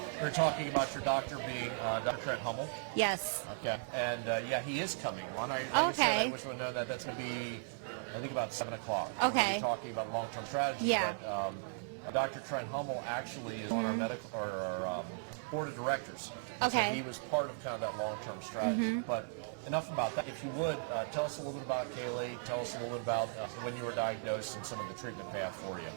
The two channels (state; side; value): silent; left; digital silence